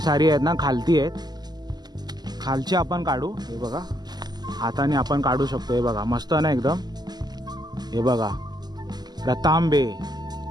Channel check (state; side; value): late; left; 0.20 ms